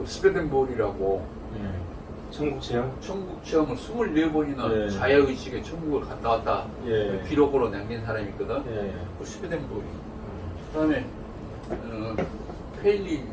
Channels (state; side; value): identical; both; correlation 1.00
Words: 스웨덴볼이라고 천국 체험을 24번이나 자야의식의 천국을 갔다 왔다 기록으로 남긴 사람이 있거든. 그 스웨덴볼이. 그다음에